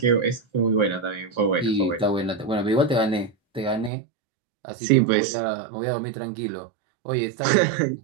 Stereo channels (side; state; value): left; drops out; at 3.9 s